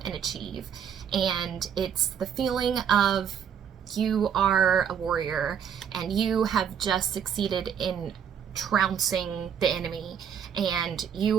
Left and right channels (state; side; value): quieter; left; 8.2 dB